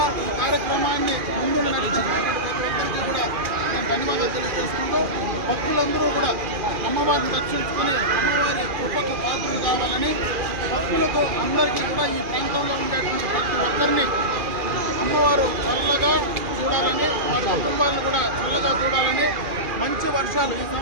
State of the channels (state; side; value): late; left; 2.4 ms